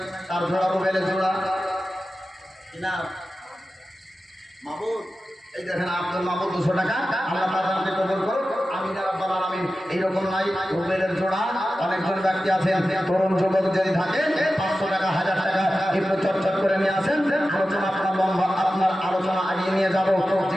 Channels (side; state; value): both; normal; correlation 0.93